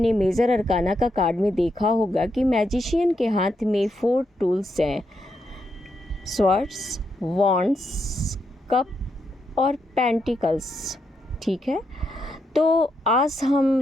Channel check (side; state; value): both; normal; correlation 0.81